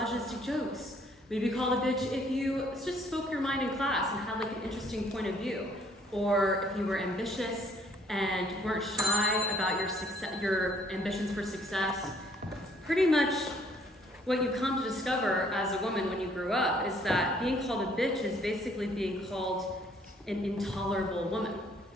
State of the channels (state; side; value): normal; both; correlation 0.63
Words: jokes. We'd be called a bitch if you just spoke your mind in class and had like an interesting point of view. Or if you were ambitious and weren't shy about your ambitions for success. Pretty much what you come to discover as a woman when you grew up is that being called a bitch is basically being called an intolerable woman.